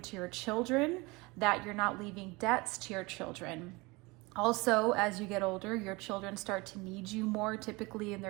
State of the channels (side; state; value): left; quieter; 24.4 dB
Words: to your children, that you're not leaving debts to your children. Also, as you get older, your children start to need you more, typically in